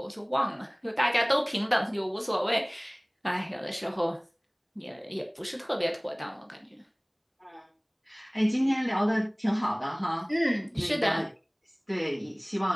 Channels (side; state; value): both; identical; correlation 1.00